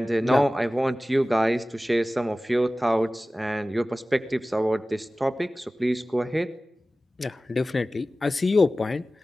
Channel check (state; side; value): normal; both; correlation 0.96